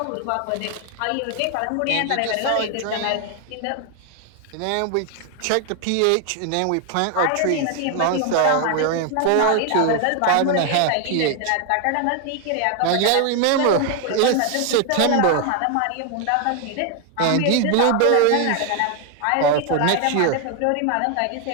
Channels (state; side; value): different; both; correlation 0.01